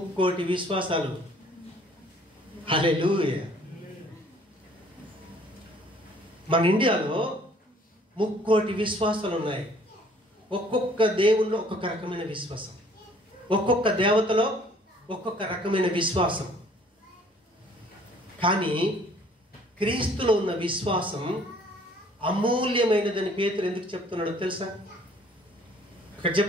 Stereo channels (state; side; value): normal; both; correlation 0.57